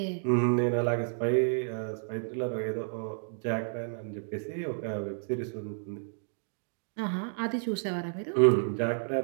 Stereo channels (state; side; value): silent; left; digital silence